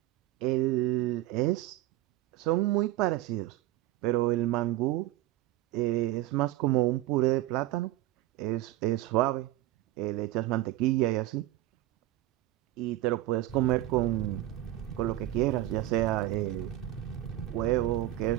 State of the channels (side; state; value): left; quieter; 15.4 dB